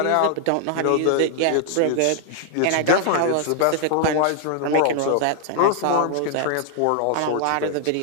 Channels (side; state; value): both; different; correlation 0.00